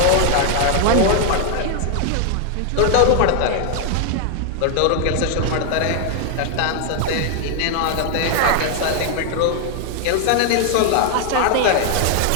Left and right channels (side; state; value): both; different; correlation 0.00